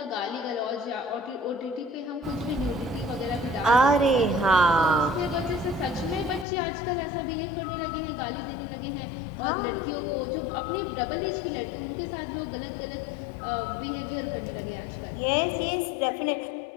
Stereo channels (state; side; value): drops out; right; at 6.5 s